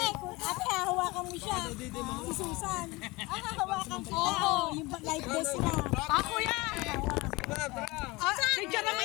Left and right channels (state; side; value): quieter; right; 22.9 dB